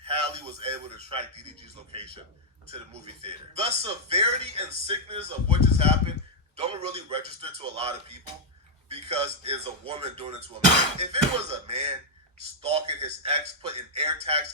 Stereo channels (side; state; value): both; normal; correlation -0.02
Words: Halle was able to track DDG's location to the movie theater. The severity and sickness of what just happened don't really register to a lot of people because it's a woman doing it to a man. If it was a man stalking his ex, putting